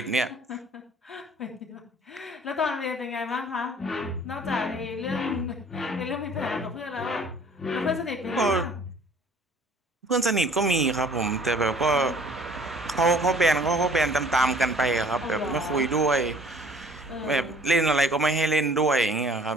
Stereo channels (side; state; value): both; normal; correlation 0.53